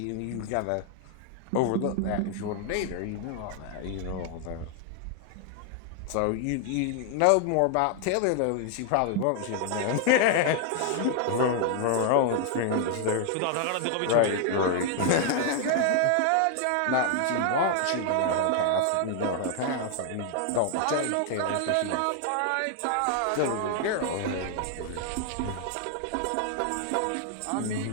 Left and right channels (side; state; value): both; different; correlation 0.00